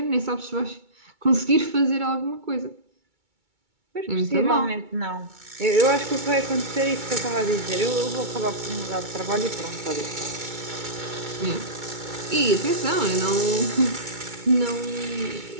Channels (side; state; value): left; late; 2.2 ms